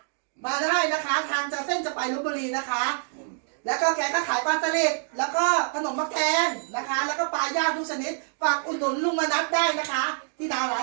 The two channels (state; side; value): silent; left; 59 dB below the other